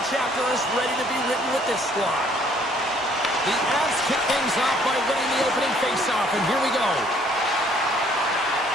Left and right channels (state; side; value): normal; both; correlation 0.62